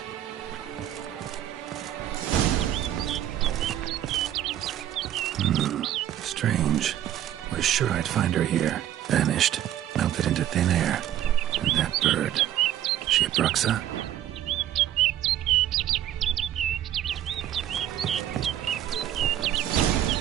Strange. Was sure I'd find her here. Vanished. Melted into thin air. And that bird. She a Bruxa?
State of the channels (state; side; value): quieter; left; 11.8 dB